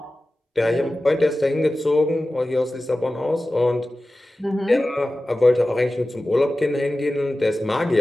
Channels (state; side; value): normal; both; correlation 0.95